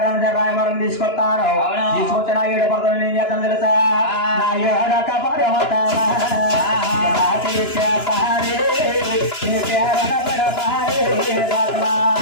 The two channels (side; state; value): right; late; 2.9 ms